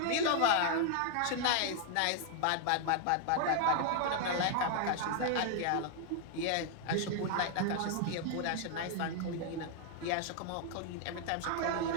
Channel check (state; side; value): different; both; correlation 0.00